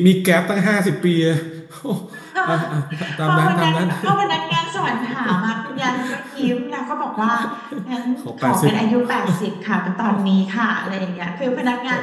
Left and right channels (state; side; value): identical; both; correlation 1.00